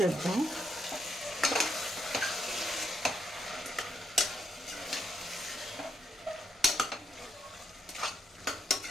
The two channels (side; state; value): both; normal; correlation 0.78